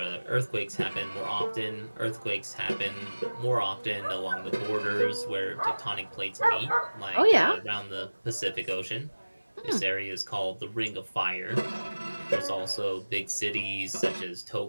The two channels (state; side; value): inverted; both; correlation -1.00